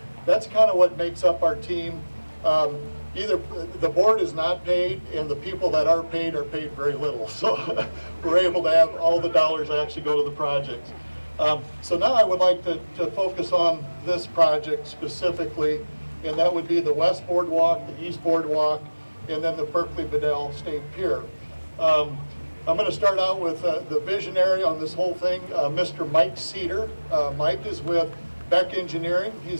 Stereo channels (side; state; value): both; inverted; correlation -1.00